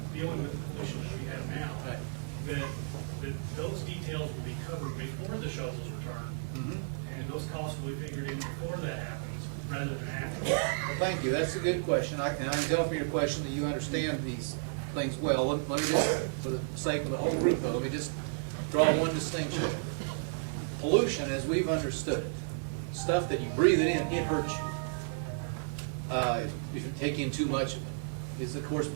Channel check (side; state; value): left; silent; digital silence